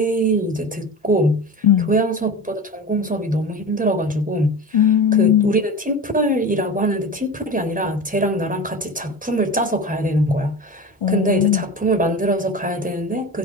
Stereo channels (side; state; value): both; normal; correlation 0.30